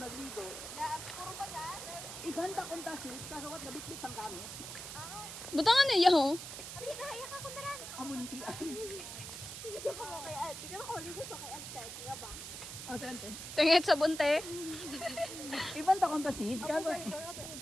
Iganda kong tasit, kasawat na bitbit ang kami. Butangan niya, ho. Amunti ay. Oh, sante. Tingit sa bunte. Ibanda kong tasit, kasawat.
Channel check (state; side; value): noise; right; hiss, 9 dB below the sound